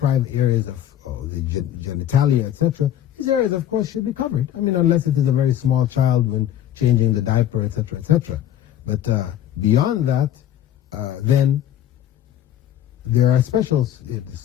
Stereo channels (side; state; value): right; quieter; 11.2 dB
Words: areas of the genitalia, etc. These areas, of course, should be covered. I mean, unless it is a very small child when changing the diaper, etc., etc. But beyond that, then there are special